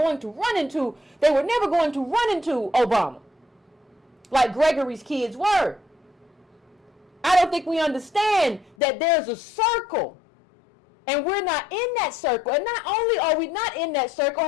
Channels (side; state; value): right; drops out; at 8.8 s